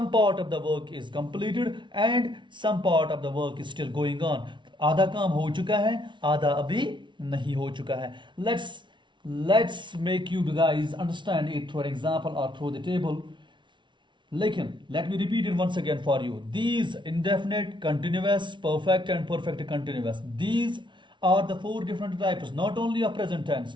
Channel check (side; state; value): left; late; 0.24 ms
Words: part of the work is completed and some part of the work is still going on. आधा काम हो चुका है, आधा अभी नहीं हो चुका है। Let's make you guys understand it through an example or through the table. लेकिन let me repeat it once again for you. These indefinite, continuous, perfect and perfect continuous, these are the four different types, not only of present tense,